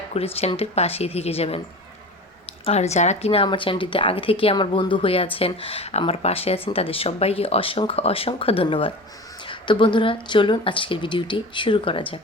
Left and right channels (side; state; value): both; normal; correlation 0.34